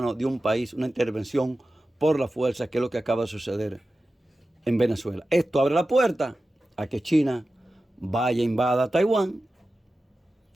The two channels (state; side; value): normal; both; correlation 0.94